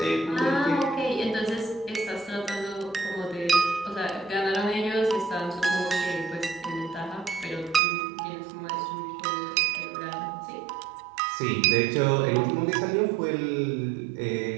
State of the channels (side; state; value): left; drops out; at 7.8 s